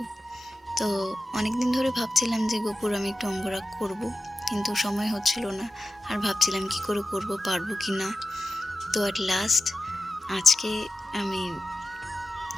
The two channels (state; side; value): normal; both; correlation 0.91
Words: তো অনেক দিন ধরে ভাবছিলাম যে গপুর আমি একটু অঙ্গরাগ করব, কিন্তু সময় হচ্ছিল না। আর ভাবছিলাম কি করে করব, পারবো কি না। তো অ্যাট লাস্ট আজকে আমি